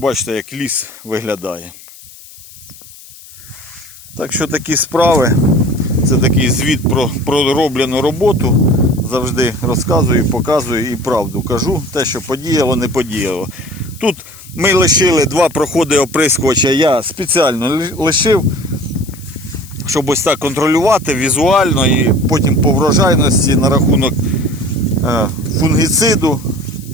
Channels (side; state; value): left; noise; hiss, 20 dB below the sound